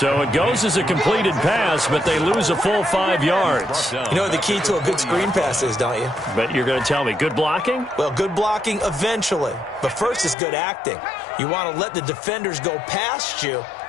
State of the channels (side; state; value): right; drops out; at 10.4 s